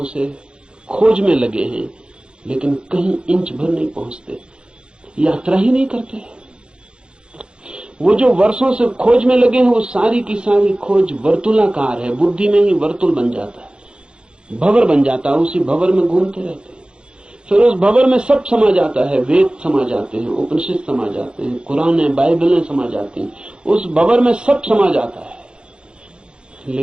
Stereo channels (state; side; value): late; left; 0.052 ms